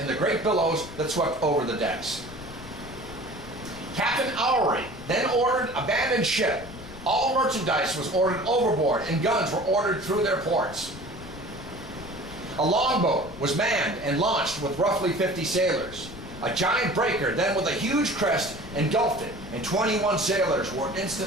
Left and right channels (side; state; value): left; noise; rumble, 15 dB below the sound